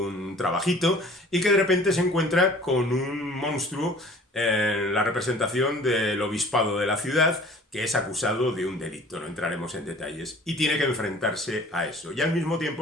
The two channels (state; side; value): normal; both; correlation 0.49